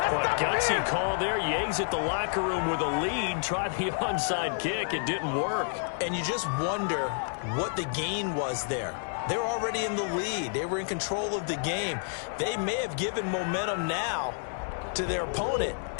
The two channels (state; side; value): silent; right; 58 dB below the other